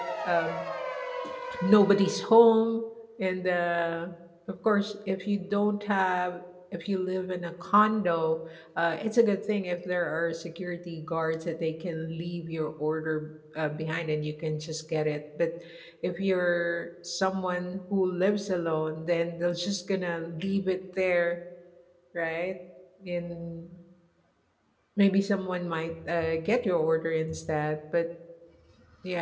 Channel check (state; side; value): identical; both; correlation 1.00